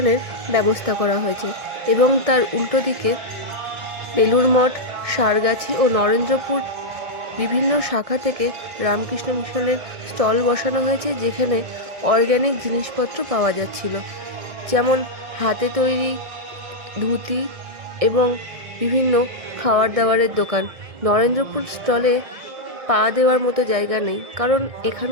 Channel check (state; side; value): late; left; 1.6 ms